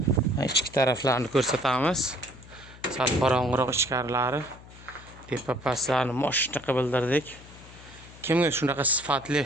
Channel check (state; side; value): noise; left; hum, 19 dB below the sound